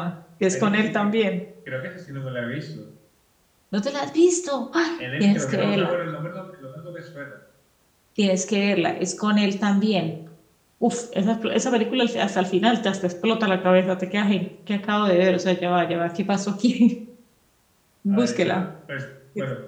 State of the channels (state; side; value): identical; both; correlation 1.00